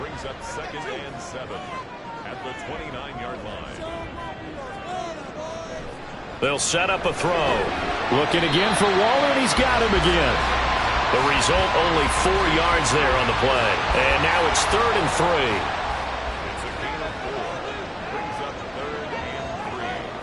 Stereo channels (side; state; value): both; identical; correlation 1.00